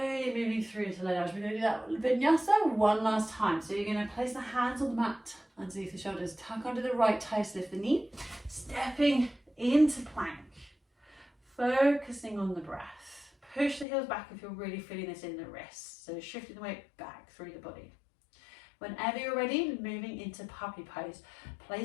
moving through to low lunge. We're going to do that vinyasa one last time. So you're going to place the hands on the mat underneath the shoulders, tuck under the right toes, lift the knee, stepping into plank. Focusing on the breath. Push the heels back if you're really feeling this in the wrists. So shifting the weight back through the body. Whenever you're ready, moving into puppy pose.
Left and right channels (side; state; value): right; drops out; at 13.9 s